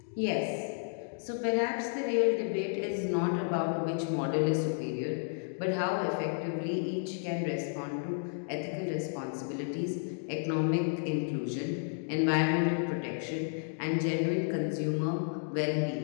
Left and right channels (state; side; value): silent; right; digital silence